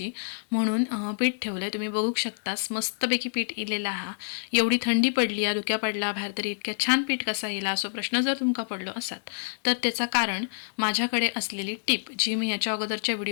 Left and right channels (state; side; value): silent; right; digital silence